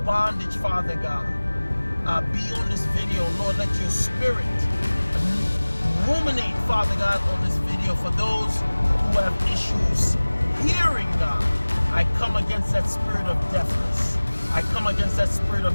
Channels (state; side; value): inverted; both; correlation -1.00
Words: bondage, Father God, be on this video. Lord, let your spirit ruminate, Father God, on this video for those who have issues hearing, God. I come against that spirit of deafness. I come against that spirit of